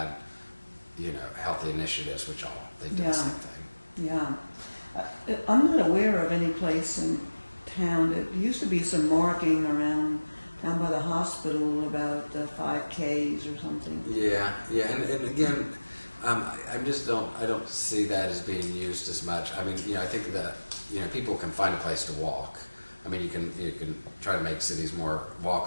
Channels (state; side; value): inverted; both; correlation -1.00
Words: healthy initiatives, which they do the same thing. Yeah. I'm not aware of any place in town. There used to be some marking around down by the hospital about 5Ks or something. Yeah, and again, I just I don't see that as being used as much. I mean, I think that, people can find a place to walk. I mean, you can try to make cities more